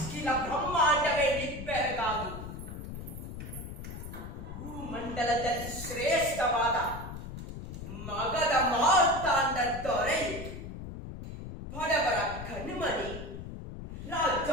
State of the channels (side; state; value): left; noise; rumble, 9 dB below the sound